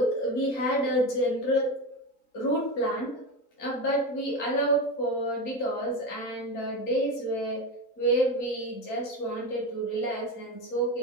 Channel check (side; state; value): right; late; 3.9 ms